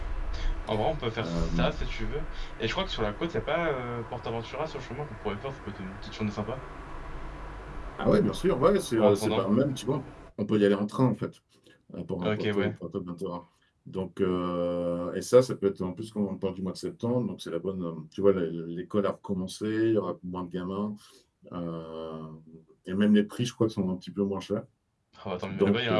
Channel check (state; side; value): identical; both; correlation 1.00